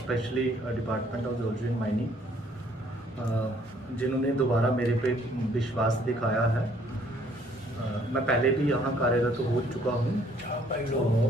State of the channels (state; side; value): normal; both; correlation 0.62